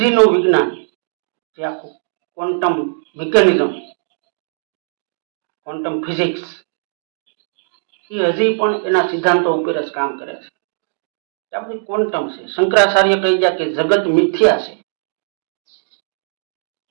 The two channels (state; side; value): silent; left; digital silence